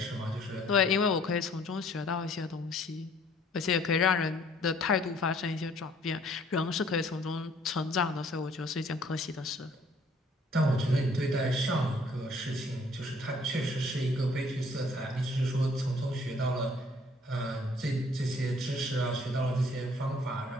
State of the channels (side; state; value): both; normal; correlation 0.59